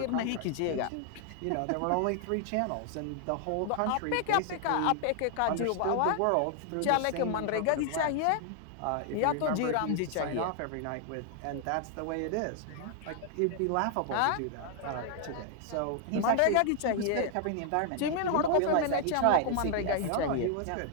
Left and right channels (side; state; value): both; different; correlation 0.00